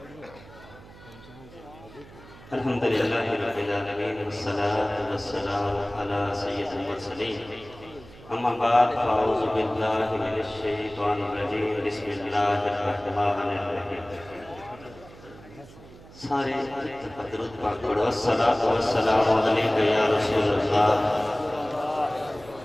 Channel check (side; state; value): right; noise; hum, 20 dB below the sound